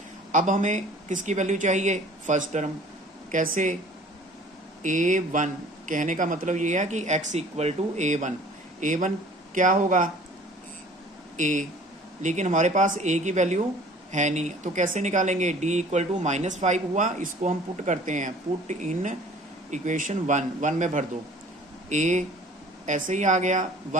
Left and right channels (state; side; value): normal; both; correlation 0.49